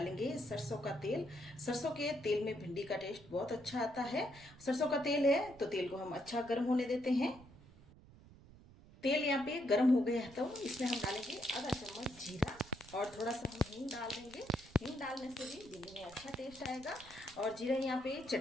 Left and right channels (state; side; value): noise; right; rumble, 21 dB below the sound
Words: सरसों का तेल। सरसों के तेल में भिंडी का टेस्ट बहुत अच्छा आता है। सरसों का तेल है तो तेल को हम अच्छा गर्म होने देते हैं। तेल यहाँ पे गर्म हो गया है तो इसमें हम डालेंगे आधा चम्मच जीरा, और थोड़ा सा हम हींग डाल देंगे। हींग डालने से भी भिंडी में अच्छा टेस्ट आएगा। और जीरा यहाँ पे